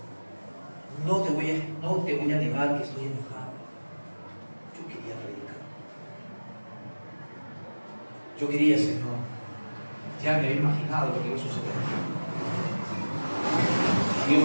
no te voy a negar que estoy enojado. Yo quería predicar. Yo quería, Señor. Ya me había imaginado lo que iba a suceder. Dios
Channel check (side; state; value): both; inverted; correlation -1.00